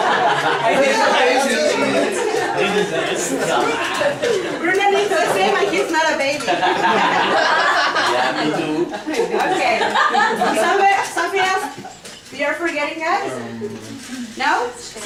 Bruno needs the same and he's not a baby. Yeah, me too. Okay, something else you're forgetting, guys? No?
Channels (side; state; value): both; identical; correlation 1.00